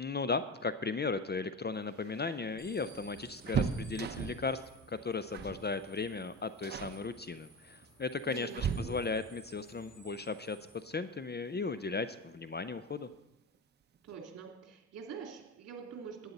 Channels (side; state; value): both; normal; correlation 0.24